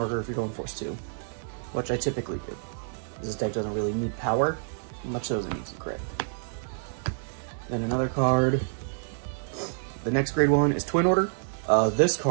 if you're going force 2, which I typically do. This deck doesn't really need power, much so as it needs some crit. Then another card. The next grade 1 is Twin Order. This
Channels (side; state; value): left; silent; digital silence